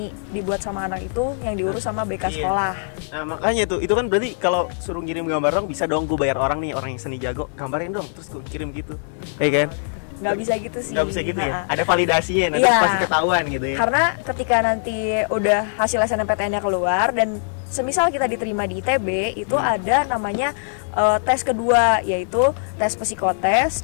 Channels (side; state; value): right; silent; digital silence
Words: dibuat sama anak itu yang diurus sama BK sekolah. Nah, makanya itu kan berarti kalau suruh ngirim gambar dong, bisa dong gue bayar orang nih, orang yang seni jago, gambarin dong, terus gue kirim gitu. Kayak kan? Nggak bisa gitu sih. Nggak bisa gitu ya? Ada validasinya, nanti pasti ketahuan gitu ya? Karena ketika nanti udah hasil SNMPTN-nya keluar dan semisal kita diterima di ITB, itu ada namanya tes kedua, yaitu tes psikotes